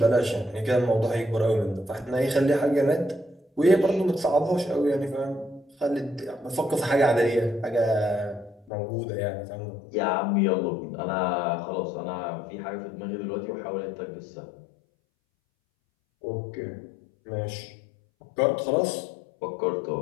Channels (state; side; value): drops out; right; at 8.7 s